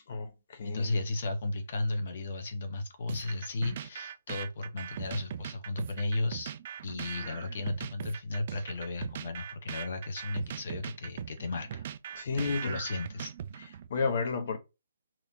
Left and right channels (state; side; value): inverted; both; correlation -0.82